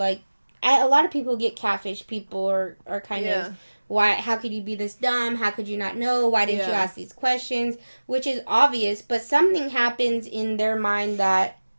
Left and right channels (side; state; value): both; inverted; correlation -1.00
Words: a lot of people who get catfish, people are kind of, how could you be this dumb? How could you not know? Why didn't you ask these questions? Which is obvious, but something happens in their mind that